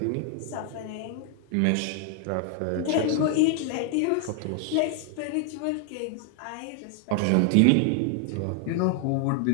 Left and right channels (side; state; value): both; different; correlation 0.00